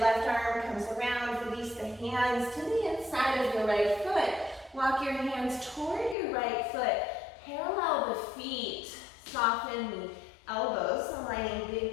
arm comes around, release the hands to the inside of your right foot. Walk your hands toward your right foot. Parallel the feet. Soften the elbows, aligning big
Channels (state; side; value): drops out; right; at 6.2 s